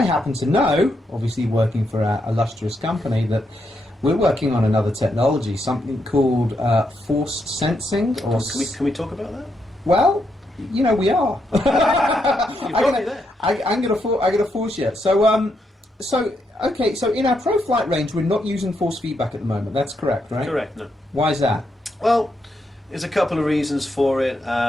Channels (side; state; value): both; normal; correlation 0.80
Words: happen to know, obviously working for a illustrious company, that we're working on another technology, something called force sensing. Or can we talk about that? Well, we are. I'm going to force you. Okay, so in our Pro Flight range, we're not using force feedback at the moment. That's correct, right? Correct, no. Why is that? Well, there's a couple of reasons for it.